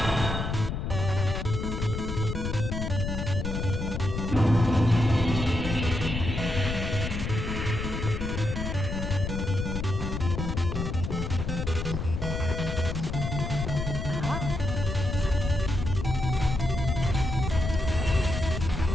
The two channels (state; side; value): noise; left; rumble, 3 dB below the sound